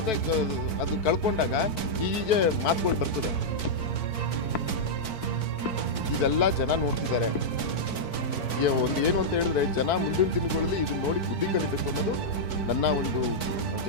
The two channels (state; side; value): late; right; 4.5 ms